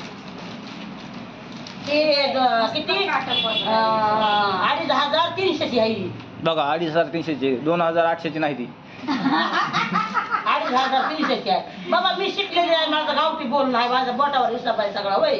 ते किती 2,300ची आहे बघा 2,300ची 2,800ची नाही ती 2,300ची आहे बाबा मी शिकलेली आहे माझं गावठी बोलणं आहे माझ्या बोटावर हिसाब आहे सगळा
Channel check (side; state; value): both; identical; correlation 1.00